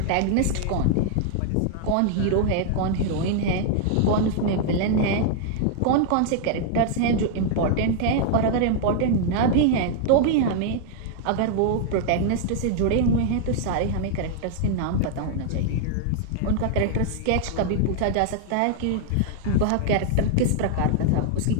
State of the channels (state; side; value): different; both; correlation -0.01